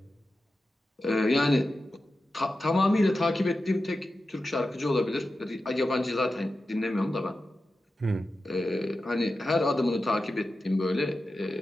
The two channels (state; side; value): normal; both; correlation 0.92